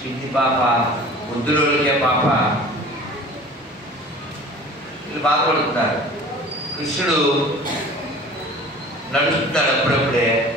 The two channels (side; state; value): both; normal; correlation 0.43